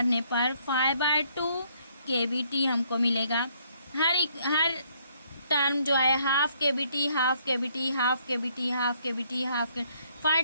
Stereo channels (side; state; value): both; inverted; correlation -0.67